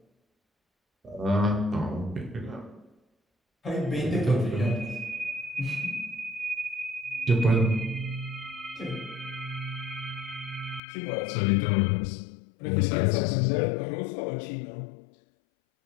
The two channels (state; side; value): drops out; right; at 10.8 s